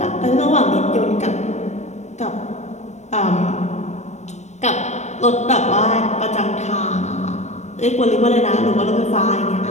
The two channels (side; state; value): right; late; 0.33 ms